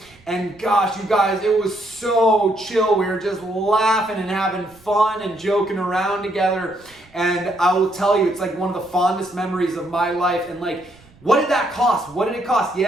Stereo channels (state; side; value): noise; right; rumble, 28 dB below the sound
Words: And gosh, you guys, it was so chill. We were just laughing and having fun and joking around together. And I will tell you, it's like one of the fondest memories of my life. And like, what did that cost? What did it cost?